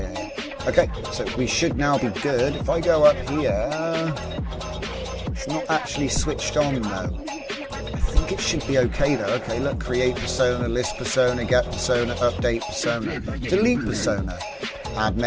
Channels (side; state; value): both; identical; correlation 1.00